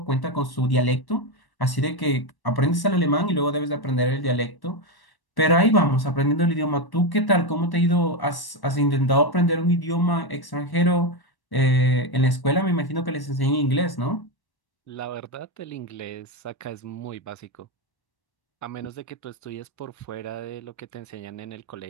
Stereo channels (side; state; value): right; late; 1.1 ms